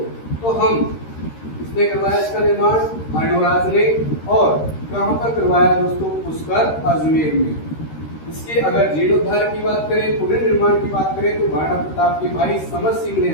तो हम इसने करवाया इसका निर्माण अर्णोराज ने। और कहाँ पर करवाया दोस्तों? पुष्कर अजमेर में। इसके अगर जीर्णोद्धार की बात करें, पूरे निर्माण की बात करें तो महाराणा प्रताप के भाई समर सिंह ने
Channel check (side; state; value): right; late; 13 ms